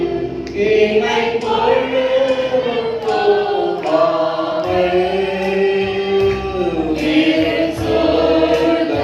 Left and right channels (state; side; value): identical; both; correlation 1.00